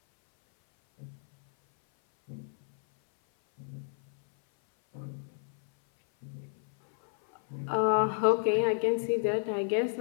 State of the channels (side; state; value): right; silent; 57 dB below the other